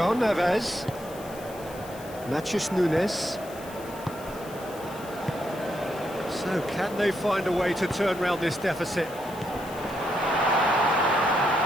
Neves. Matheus Nunes. So can they find a way to turn round this deficit?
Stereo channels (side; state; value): left; noise; hiss, 19 dB below the sound